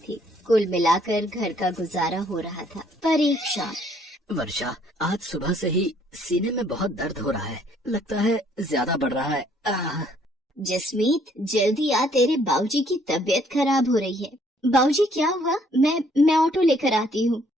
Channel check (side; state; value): both; normal; correlation 0.64